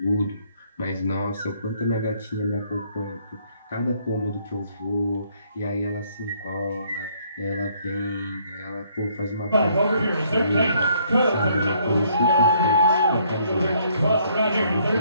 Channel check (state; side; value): inverted; both; correlation -0.66